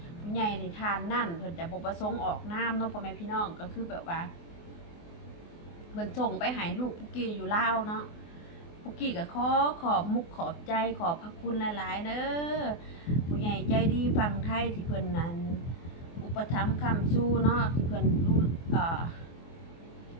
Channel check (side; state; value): right; late; 24 ms